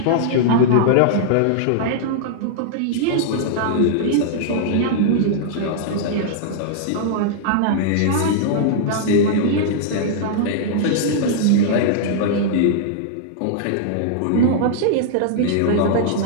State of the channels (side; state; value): both; different; correlation -0.01